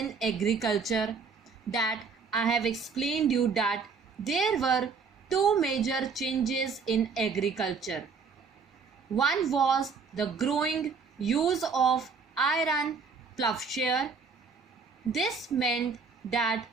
agriculture that I have explained you that there were two major changes in agriculture. One was the growing use of iron plowshare. This meant that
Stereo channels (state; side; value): quieter; left; 5.2 dB